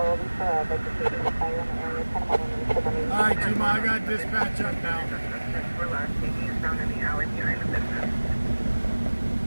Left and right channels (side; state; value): both; inverted; correlation -1.00